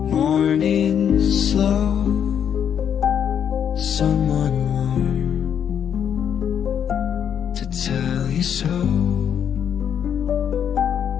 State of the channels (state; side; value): quieter; right; 8.5 dB